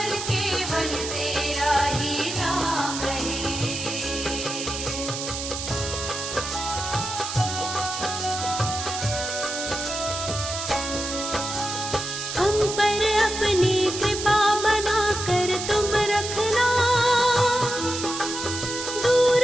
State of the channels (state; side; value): noise; right; hiss, 5 dB below the sound